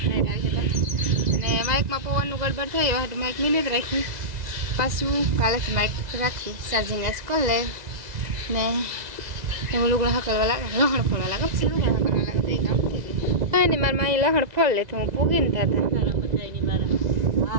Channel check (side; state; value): left; late; 2.0 ms